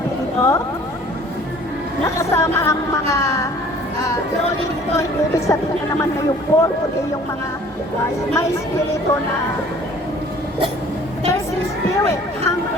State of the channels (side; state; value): both; normal; correlation 0.52